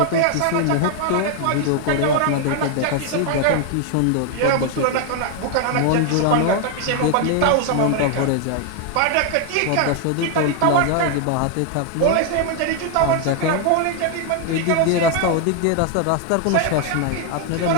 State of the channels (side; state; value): both; different; correlation 0.00